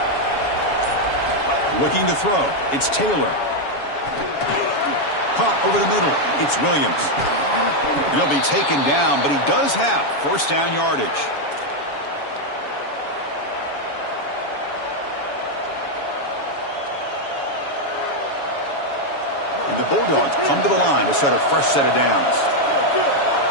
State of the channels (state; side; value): late; right; 7.1 ms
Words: Looking to throw. It's Taylor. Caught over the middle. It's Williams. And he'll be taken down, but he does have first down yardage. And the Bulldogs come to the line to start a fresh set of downs.